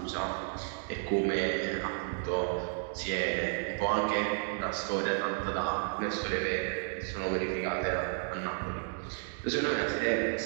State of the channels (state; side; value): silent; left; 56 dB below the other